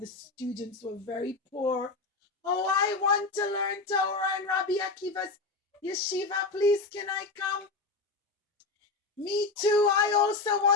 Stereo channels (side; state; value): right; quieter; 3.7 dB